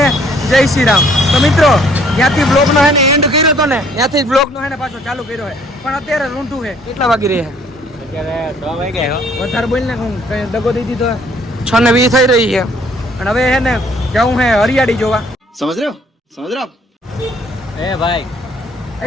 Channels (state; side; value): normal; both; correlation 0.61